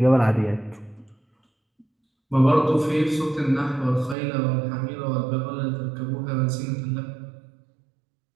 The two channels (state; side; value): drops out; left; at 4.2 s